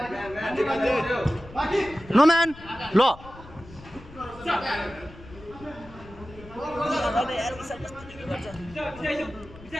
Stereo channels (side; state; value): left; noise; rumble, 18 dB below the sound